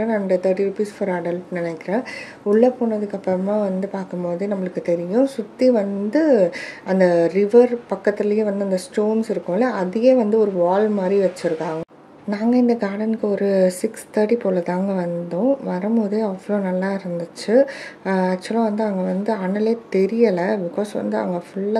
and 30 rupees for adult நினைக்கிறேன். உள்ளே போனதுக்கப்புறமா வந்து பார்க்கும்போது நம்மளுக்கு தெரியும் சுற்றி வந்து அந்த ரிவர் பக்கத்துலேயே வந்து அந்த ஸ்டோன்ஸ் இருக்கும்ல அதையே வந்து ஒரு வால் மாதிரி வச்சுருக்காங்க. நாங்கள் இந்த கார்டனுக்கு ஒரு 6:30 போல் தாங்க வந்தோம். வரும்போதே அவ்வளோ நல்லா இருந்துச்சு. ஆக்சுவலாக வந்து அங்கே வந்து அனலே தெரியலை. பிகாஸ் வந்து அங்கே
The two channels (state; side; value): identical; both; correlation 1.00